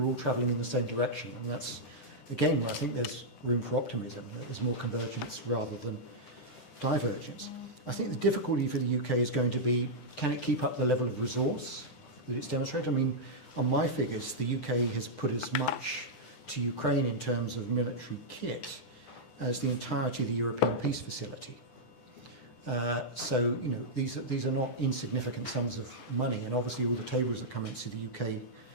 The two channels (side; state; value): right; late; 10 ms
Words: all travelling in the same direction. And that's, again, where I think there's room for optimism. There's more convergence rather than divergence. I think the difficulty for the UK is going to be, can it keep up the level of resource that it's demonstrated? I mean, on my figures, the UK has put as much to Ukraine in terms of military kit as the entirety of the European Peace Facility. So, you know, these are not insignificant sums of money, and obviously all the tables that come into the UK